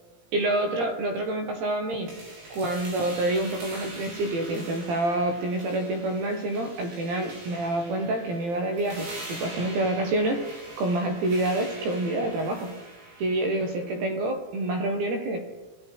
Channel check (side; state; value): left; late; 18 ms